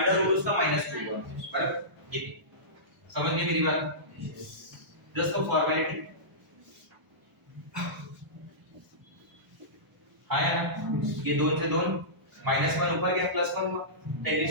रूट उसका -2 होगा, बराबर। ये समझ गए मेरी बात? Just for formality. हाँ यार, ये 2 से 2 -1 ऊपर गया, +1 हुआ, 10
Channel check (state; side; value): late; left; 1.0 ms